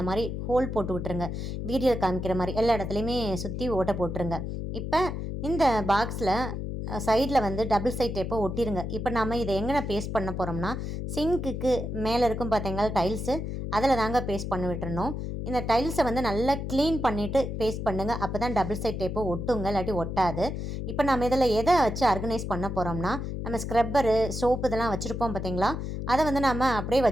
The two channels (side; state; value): left; noise; hum, 4 dB below the sound